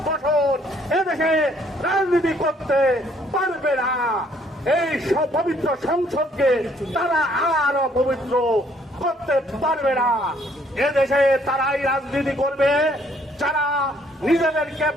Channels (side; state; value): both; normal; correlation 0.65